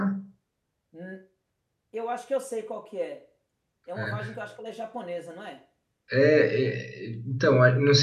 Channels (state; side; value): identical; both; correlation 1.00